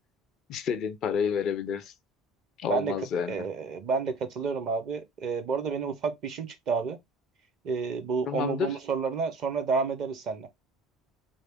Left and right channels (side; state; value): both; normal; correlation 0.45